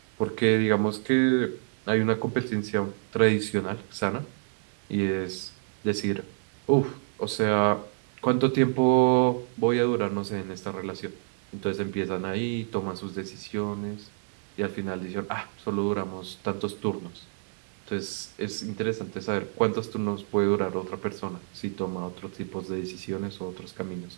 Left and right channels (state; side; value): silent; left; digital silence